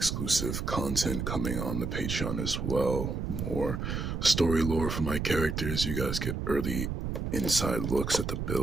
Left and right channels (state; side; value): noise; right; rumble, 3 dB below the sound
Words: content coming on the Patreon as well. More story lore for my characters. You guys get early inside looks at the